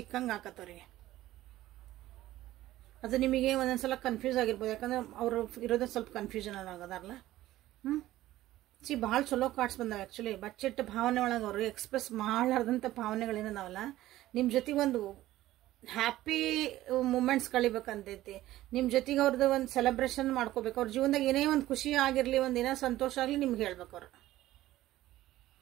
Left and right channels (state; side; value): quieter; left; 15.3 dB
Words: ಆಕತ್ತವ್ರಿಗೆ. ಅದು ನಿಮಗೆ ಒಂದೊಂದ್ಸಲ ಕನ್ಫ್ಯೂಸ್ ಆಗಿರ್ಬೋದು, ಯಾಕಂದ್ರೆ ಅವರು ಇರೋದೇ ಸ್ವಲ್ಪ ಕನ್ಫ್ಯೂಷನ್ ಆಗದಾರಲ್ಲ. ಭಾಳ ಚಲೋ ಕಾರ್ಡ್ಸ್ ಬಂದಾವೆ ಆ್ಯಕ್ಚುಲಿ. ಬಚ್ಚಿಟ್ಟ ಭಾವನೆ ಒಳಗೆ ಅವರು ಎಕ್ಸ್ಪ್ರೆಸ್ ಮಾಡಲಾರ್ದಂಥ ಭಾವನೆಗಳೇನದಾವಲ್ಲ, ನಿಮ್ಮ ಜೊತೆಗೆ ಒಂದು ಹ್ಯಾಪಿ ಮೂಮೆಂಟ್ಸ್ ಕಳಿಬೇಕಂತೈತಿ. ನಿಮ್ಮ ಜೊತೆಗೆ ಅವ್ರದ್ದು ಒಂದು ಸೆಲೆಬ್ರೇಷನ್ ಮಾಡ್ಕೋಬೇಕು. ಅವ್ರ ಜೀವನದಾಗ ಏನೇ ಒಂದು ಖುಷಿ ಆಗಿರಲಿ, ಒಂದು ಏನೋ ಸಂತೋಷ ಆಗಲಿ ನಿಮ್ಗೆ ಹೇಳ್ಬೇಕು ಅವ್ರು.